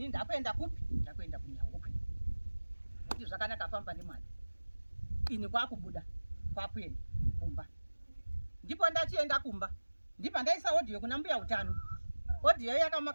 ndakuenda kupi? Ndakuenda kuNharauda. Kuti zvakanaka famba nemwana. Ini kwakubuda kwakuenda kumba. Ndipo ndachienda kumba. Ndipo ndaisa audio kuna mbuya utano. Audio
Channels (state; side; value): inverted; both; correlation -1.00